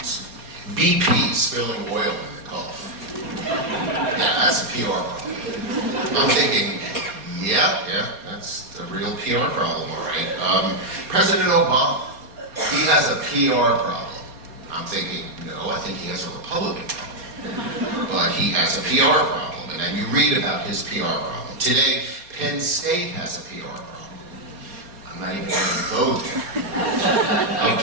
BP spilling oil in the Gulf. Yeah, that's a PR problem. I'm thinking, yeah, that's a real PR problem, all right. President Obama, he has a PR problem. I'm thinking, no, I think he has a Republican problem. But he has a PR problem, and then you read about his PR problem. Today, Penn State has a PR problem. I'm not even going to go there.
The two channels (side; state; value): left; late; 4.2 ms